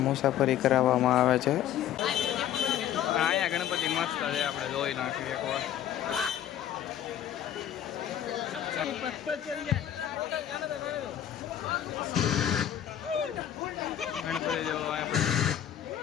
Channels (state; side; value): quieter; right; 10.8 dB